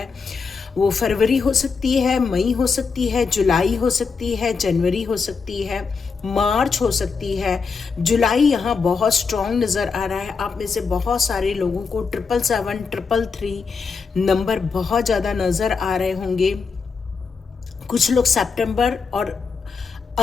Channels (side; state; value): right; quieter; 5.1 dB